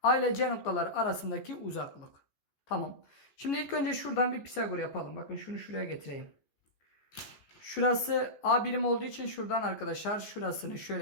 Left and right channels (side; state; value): right; late; 14 ms